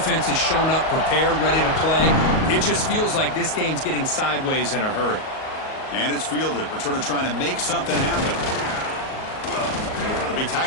has shown up, prepared, ready to play. It just feels like this game's getting sideways in a hurry. And it's fielded. Returner trying to make something happen. It'll be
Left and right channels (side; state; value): right; late; 38 ms